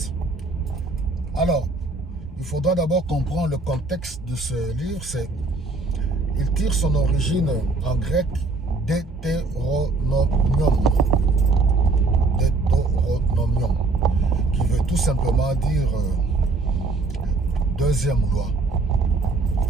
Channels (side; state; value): left; quieter; 3.4 dB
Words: Alors, il faudra d'abord comprendre le contexte de ce livre. Il tire son origine en grec Deutéronomium. Deutéronomium, qui veut tout simplement dire deuxième loi.